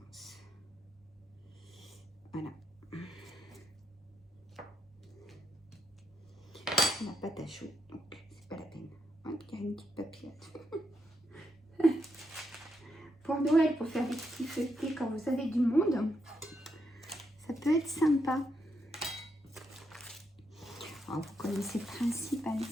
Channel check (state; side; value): normal; both; correlation 0.80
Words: Voilà. La pâte à chaud, donc c'est pas la peine. Hop, il y a une petite papillote. Pour Noël, pour faire des petits feuilletés quand vous avez du monde, ça peut être sympa. Alors, vous connaissez le principe, hein,